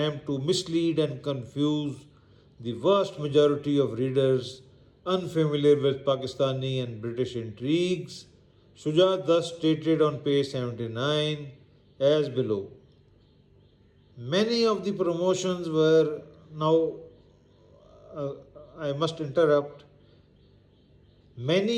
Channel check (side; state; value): both; identical; correlation 1.00